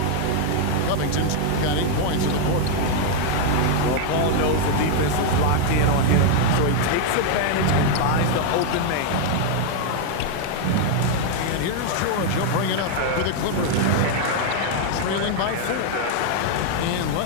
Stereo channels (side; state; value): both; different; correlation 0.00